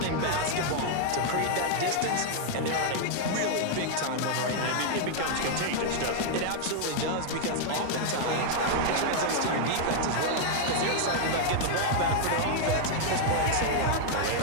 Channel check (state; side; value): different; both; correlation -0.01